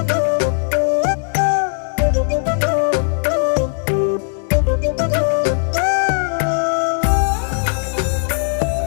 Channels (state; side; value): silent; right; 67 dB below the other